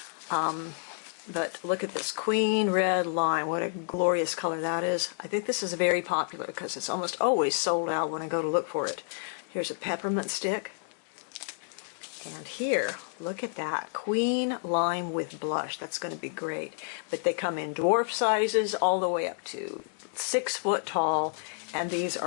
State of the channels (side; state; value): right; silent; digital silence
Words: But look at this Queen Red Lime. What a glorious color that is. I think this is very popular because it's almost always sold out when I go to look for it. Here's a peppermint stick. And here, look at that. Queen Lime with blush. That's going to be great. But they come in dwarf sizes all the way up to 6 foot tall. And these